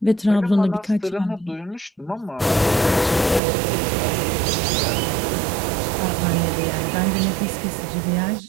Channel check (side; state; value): left; drops out; at 3.4 s